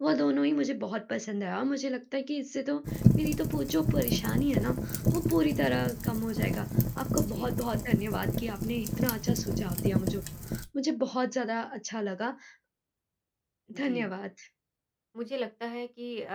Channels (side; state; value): both; identical; correlation 1.00